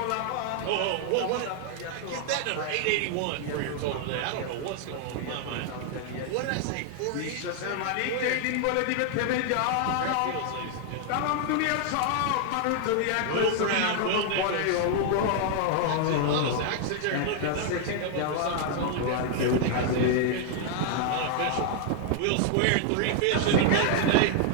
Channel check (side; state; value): both; different; correlation 0.00